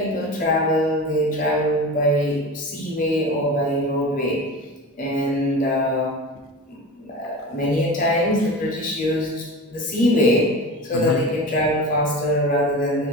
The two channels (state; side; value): normal; both; correlation 0.31